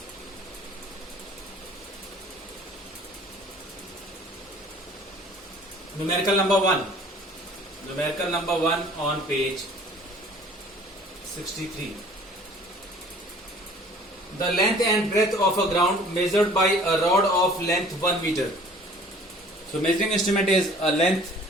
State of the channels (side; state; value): both; normal; correlation 0.51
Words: Numerical number 1. Numerical number 1 on page 63. The length and breadth of a ground measured by a rod of length 1 meter. So measuring instrument is a length